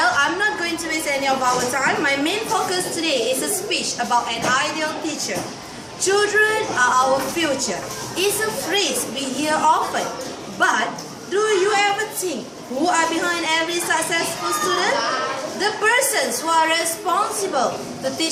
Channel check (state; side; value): identical; both; correlation 1.00